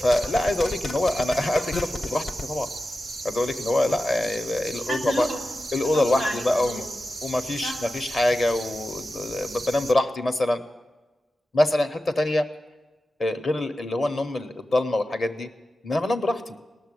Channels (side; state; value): both; normal; correlation 0.93